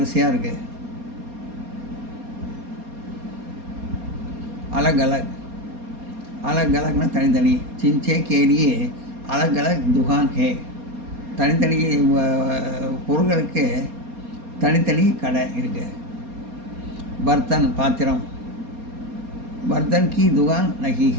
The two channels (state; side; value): late; left; 4.2 ms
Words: இருக்குது. अलग अलगना तनी चिंचे के लिए अलग अलग दुकान है. तनी பொருட்களுக்கு தனித்தனி கடை இருக்கு. बर्तन पात्रम, बर्तन की दुकान नहीं